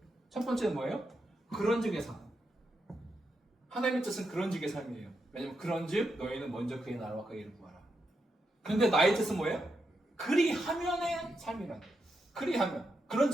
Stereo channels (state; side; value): normal; both; correlation 0.84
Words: 첫 번째는 뭐예요? 그런즉의 삶. 하나님의 뜻은 그런즉의 삶이에요. 왜냐면 그런즉 너희는 먼저 그의 나라와 그의 일을 구하라. 그런데 나의 뜻은 뭐예요? 그리하면의 삶이라는 거예요. 그리하면.